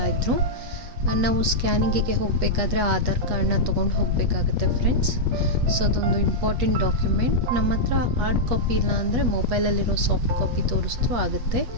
ನಾವು ಸ್ಕ್ಯಾನಿಂಗಿಗೆ ಹೋಗಬೇಕಾದ್ರೆ ಆಧಾರ್ ಕಾರ್ಡ್ನ ತೊಗೊಂಡು ಹೋಗಬೇಕಾಗುತ್ತೆ ಫ್ರೆಂಡ್ಸ್. ಸೊ ಅದೊಂದು ಇಂಪಾರ್ಟೆಂಟ್ ಡಾಕ್ಯುಮೆಂಟ್. ನಮ್ಮ ಹತ್ರ ಹಾರ್ಡ್ ಕಾಪಿ ಇಲ್ಲ ಅಂದರೆ ಮೊಬೈಲಲ್ಲಿರೋ ಸಾಫ್ಟ್ ಕಾಪಿ ತೋರಿಸ್ತೂ ಆಗುತ್ತೆ.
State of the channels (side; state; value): left; late; 8.3 ms